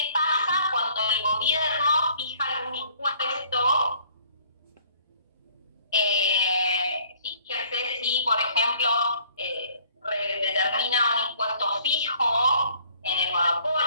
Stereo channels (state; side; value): inverted; both; correlation -0.57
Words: pasa cuando el gobierno fija algún impuesto? Fíjense si, por ejemplo, determina un impuesto fijo en el